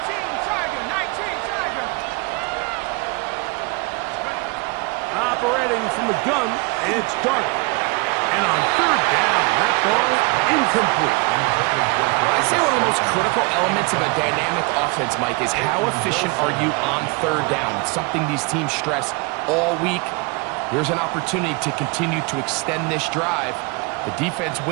Tiger. Operating from the gun, it's Dart. And on 3rd down, that ball incomplete. I'd say one of the most critical elements of a dynamic offense, Mike, is how efficient are you on 3rd down? It's something these teams stress all week. Here's an opportunity to continue to extend this drive. The defense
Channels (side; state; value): left; quieter; 28.5 dB